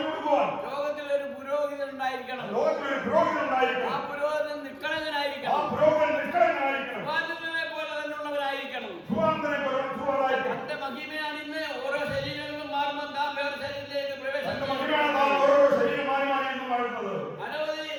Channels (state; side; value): identical; both; correlation 1.00